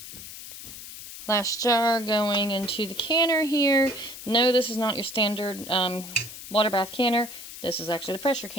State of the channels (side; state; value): left; noise; hiss, 12 dB below the sound